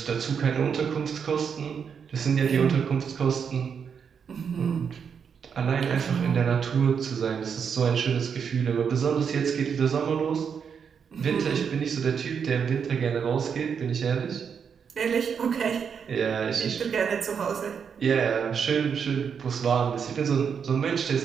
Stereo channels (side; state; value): left; quieter; 6.8 dB